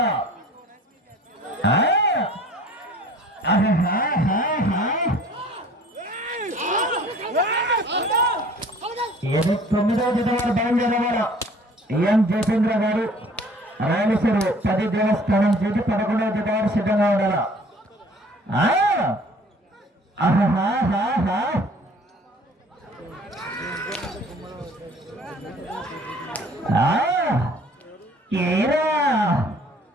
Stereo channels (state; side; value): normal; both; correlation 0.51